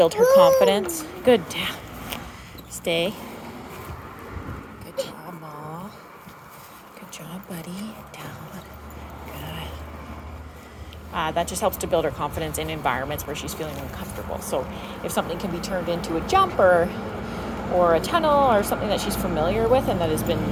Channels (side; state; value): both; identical; correlation 1.00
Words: her confidence. Good, down. Stay. Good job, Ma. Good job, buddy. Down. Good. That just helps to build her confidence in environments where she's feeling uncomfortable. So if something can be turned into a jump or a tunnel or something that she's familiar with and that has been